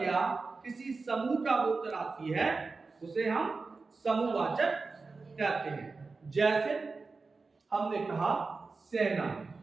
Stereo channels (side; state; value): left; quieter; 4.1 dB